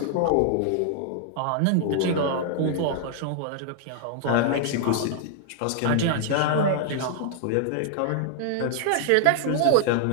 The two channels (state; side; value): different; both; correlation -0.01